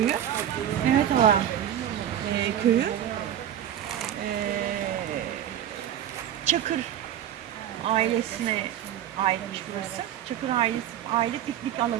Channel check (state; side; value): quieter; left; 10.8 dB